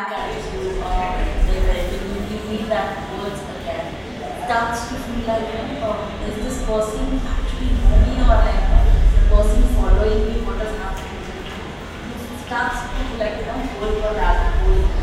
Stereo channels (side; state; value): both; identical; correlation 1.00